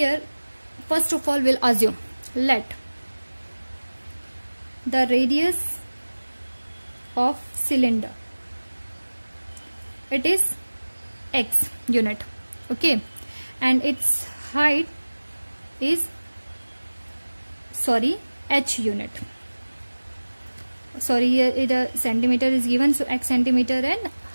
first of all we'll assume, let the radius of cylinder, it is x unit, okay, and its height is h unit, sorry, here the centimeter is given, so x centimeter and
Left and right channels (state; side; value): inverted; both; correlation -1.00